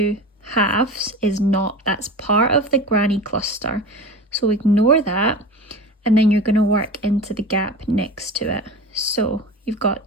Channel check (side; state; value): both; normal; correlation 0.31